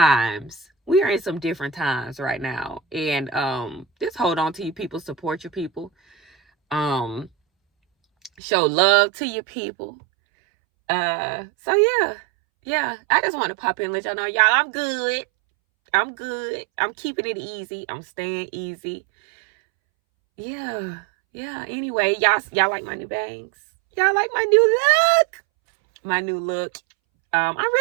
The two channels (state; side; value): drops out; left; at 8.3 s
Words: We are in some different times right now. And just hold on to your people, support your people. Show love to your people. So yeah. I just want to pop in and let y'all know, y'all, I'm good. I'm keeping it easy. I'm staying easy. Yeah. Anyway, y'all like my new bangs? Y'all like my new look? I'm